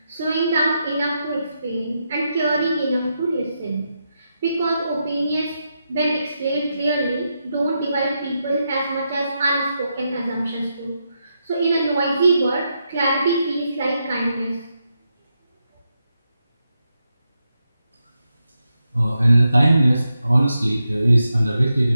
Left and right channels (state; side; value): inverted; both; correlation -0.85